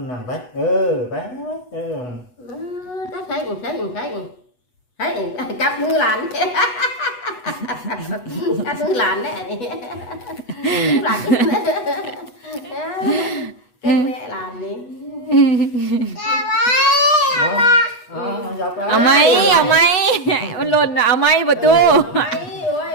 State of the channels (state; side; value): late; right; 8.1 ms